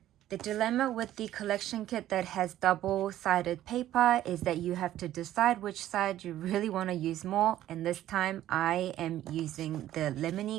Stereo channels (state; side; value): quieter; left; 13.1 dB